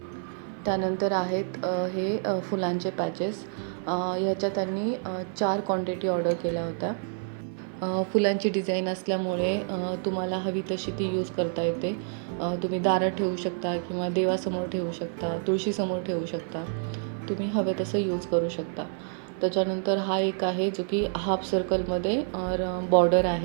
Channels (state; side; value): silent; left; 55 dB below the other